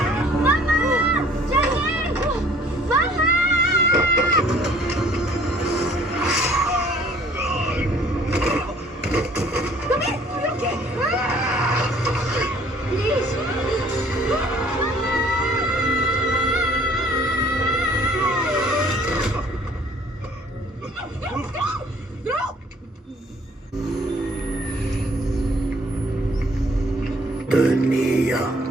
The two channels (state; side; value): normal; both; correlation 0.57